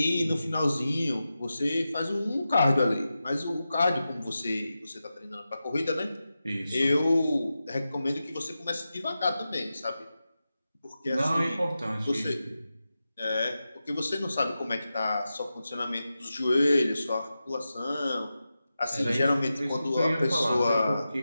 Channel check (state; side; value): inverted; both; correlation -0.92